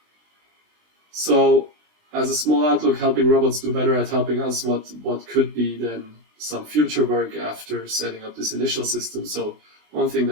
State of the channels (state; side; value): late; left; 20 ms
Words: So, as a small outlook, helping robots do better at helping us, what could be then some future work after setting up this initial system. So one thing